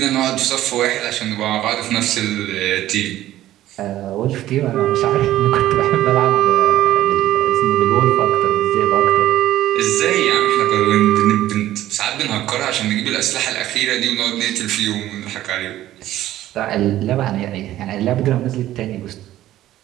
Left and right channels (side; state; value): left; quieter; 13.9 dB